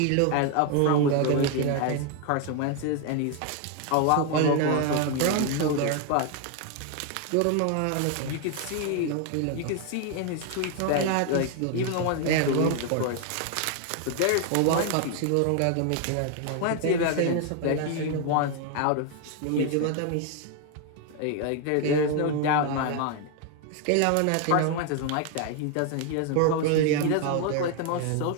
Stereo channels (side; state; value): both; different; correlation 0.01